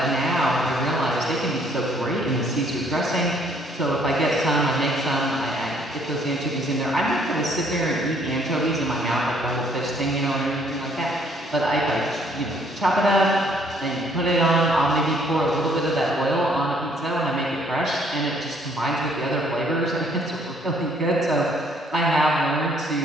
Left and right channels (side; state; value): both; normal; correlation 0.64